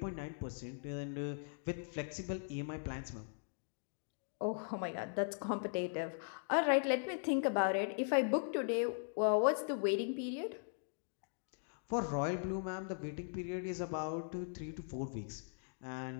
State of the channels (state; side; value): silent; right; digital silence